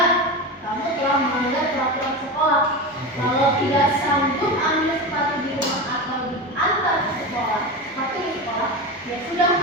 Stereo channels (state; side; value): normal; both; correlation 0.23